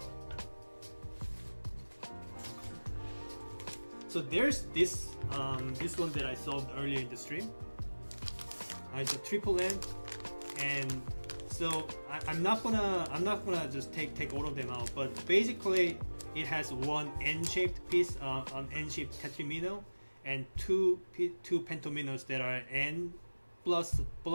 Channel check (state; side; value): inverted; both; correlation -1.00